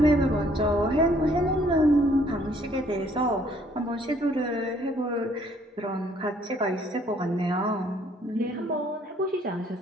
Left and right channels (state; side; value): normal; both; correlation 0.63